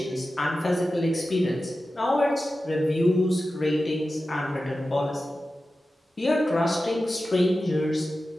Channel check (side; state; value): both; normal; correlation 0.93